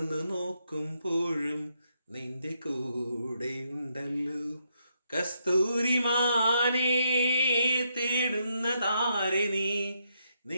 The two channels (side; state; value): both; inverted; correlation -0.78